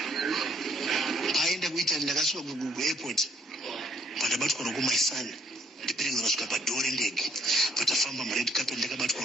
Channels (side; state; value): both; normal; correlation 0.67